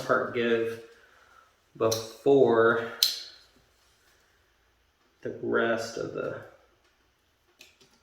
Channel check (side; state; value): both; identical; correlation 1.00